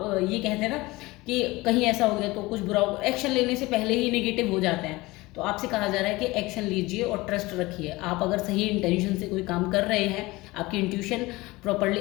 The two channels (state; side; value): quieter; right; 21.2 dB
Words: ये कहते हैं ना कि कहीं ऐसा हो गया तो कुछ बुरा हो, एक्शन लेने से पहले ही नेगेटिव हो जाते हैं। तो आपसे कहा जा रहा है कि एक्शन लीजिए और ट्रस्ट रखिए। आप अगर सही इंटेंशन से कोई काम कर रहे हैं, आपकी इंट्यूशन प्रॉपर्ली